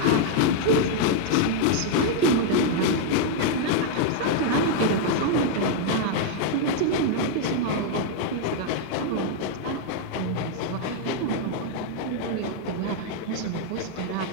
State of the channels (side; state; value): both; different; correlation 0.00